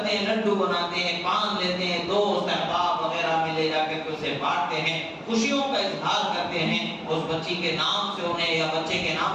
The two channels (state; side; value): identical; both; correlation 1.00